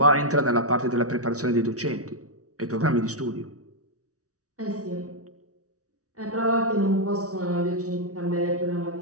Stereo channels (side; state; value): left; late; 0.67 ms